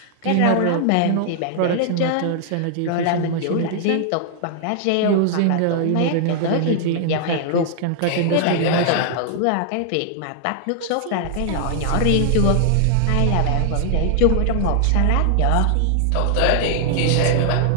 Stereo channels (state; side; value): different; both; correlation -0.01